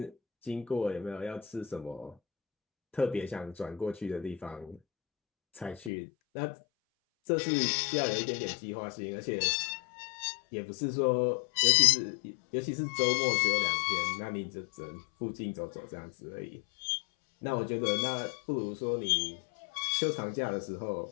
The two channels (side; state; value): right; drops out; at 5.9 s